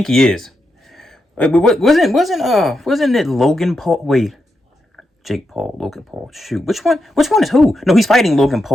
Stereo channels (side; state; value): both; normal; correlation 0.85